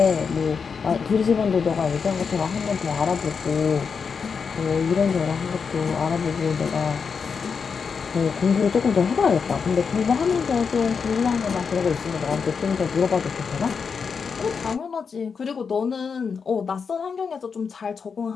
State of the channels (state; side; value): quieter; right; 5.8 dB